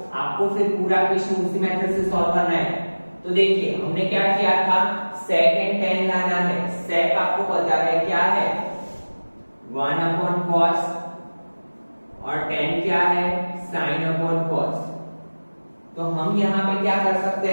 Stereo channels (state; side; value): inverted; both; correlation -1.00